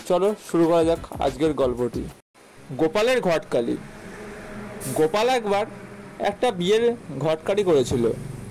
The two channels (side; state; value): both; identical; correlation 1.00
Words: চলো শুরু করা যাক আজকের গল্পটি। গোপালের ঘটকালি। গোপাল একবার একটা বিয়ের ঘটকালি করেছিল।